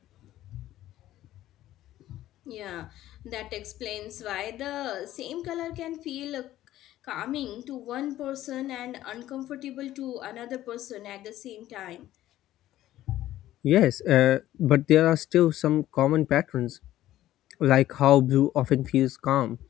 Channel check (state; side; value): quieter; right; 14.0 dB